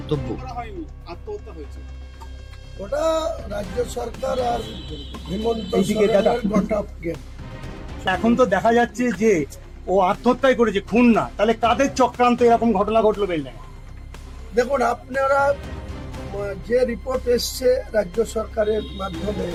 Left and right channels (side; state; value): both; identical; correlation 1.00